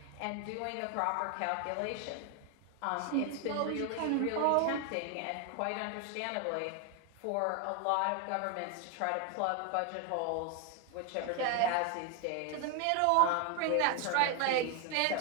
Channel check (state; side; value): different; both; correlation 0.01